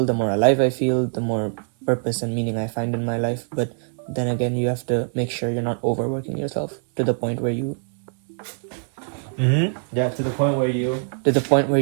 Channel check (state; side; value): silent; left; digital silence